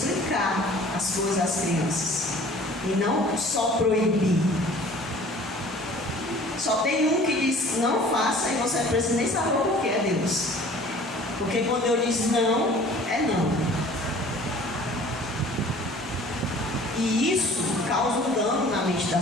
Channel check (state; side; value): normal; both; correlation 0.49